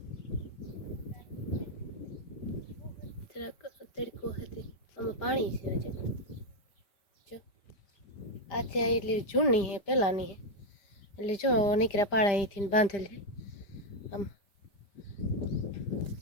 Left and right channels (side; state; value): right; late; 5.1 ms